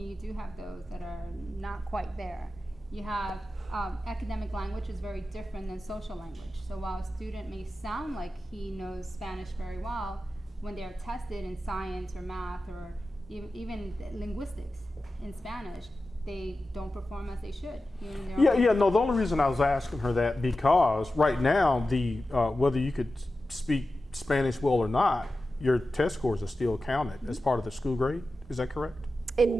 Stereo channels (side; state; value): both; normal; correlation 0.93